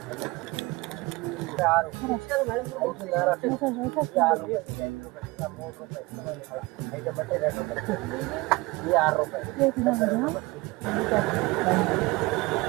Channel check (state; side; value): quieter; left; 22.9 dB